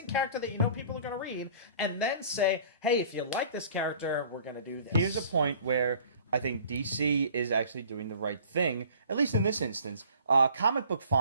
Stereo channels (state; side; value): inverted; both; correlation -0.50